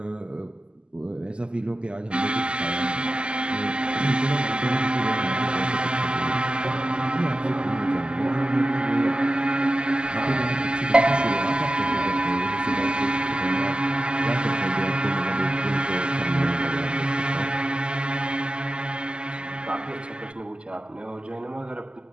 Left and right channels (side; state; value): left; late; 0.050 ms